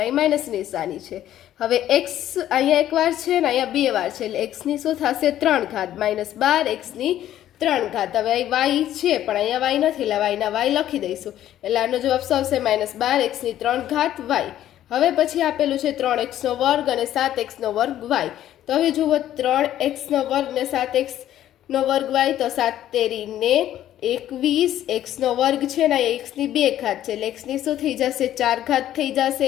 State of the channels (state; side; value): quieter; right; 12.2 dB